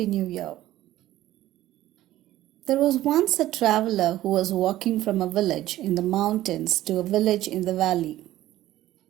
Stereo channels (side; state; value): left; quieter; 14.6 dB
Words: new year. There was once a traveler who was walking from a village in the mountains to a village in the valley.